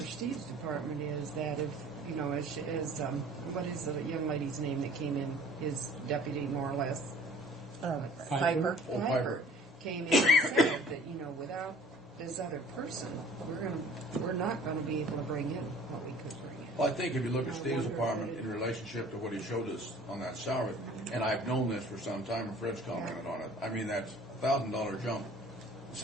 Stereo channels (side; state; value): both; normal; correlation 0.49